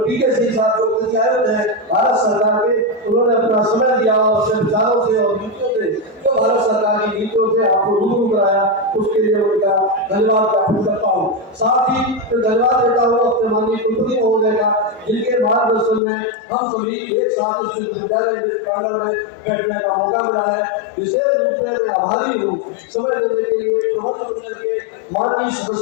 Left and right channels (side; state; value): right; drops out; at 16.0 s